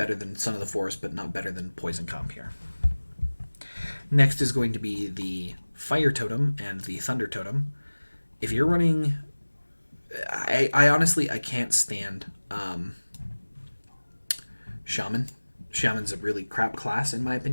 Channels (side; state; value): both; inverted; correlation -1.00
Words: than Son of the Forest, but not better than Poison Comp here. Next is going to be the Fire Totem and the Thunder Totem. If you're running... I honestly, I can't stand Shaman. Shaman's a really crap class, in my